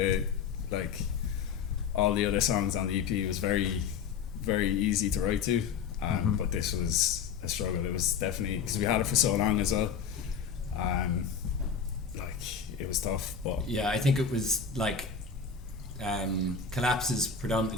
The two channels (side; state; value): right; quieter; 6.4 dB